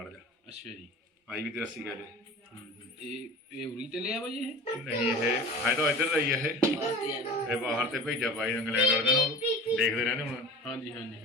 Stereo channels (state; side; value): normal; both; correlation 0.37